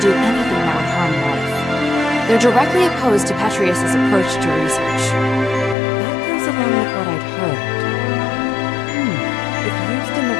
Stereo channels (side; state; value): right; drops out; at 5.8 s